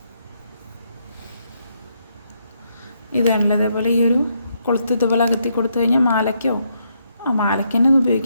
ഇതാണല്ലോ ഇതേപോലെ ഈ ഒരു കൊളുത്ത് ഇതുപോലെ അകത്തി കൊടുത്തു കഴിഞ്ഞാൽ മാലയ്ക്കോ മാലയ്ക്ക് തന്നെ ഇത്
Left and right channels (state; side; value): inverted; both; correlation -0.76